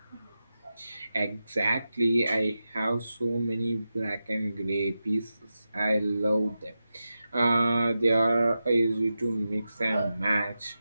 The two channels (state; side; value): inverted; both; correlation -0.92